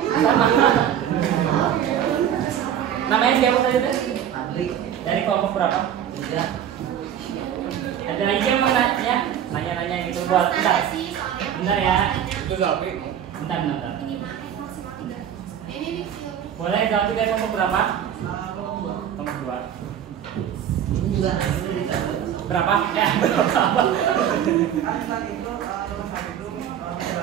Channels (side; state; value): left; quieter; 9.7 dB